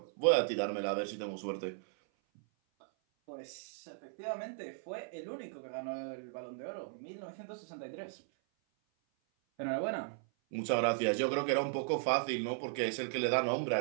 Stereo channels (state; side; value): silent; left; 53 dB below the other